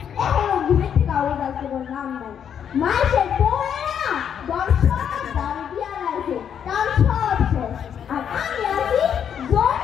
এখনো ঘুরে থেকে আওয়াজ আসতে নাম নাই। মাইসের পড়ে না দর্শক দাঁড়িয়ে দিয়া লাগছে, তার সব শেষ। আর আমি আছি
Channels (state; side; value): quieter; right; 8.4 dB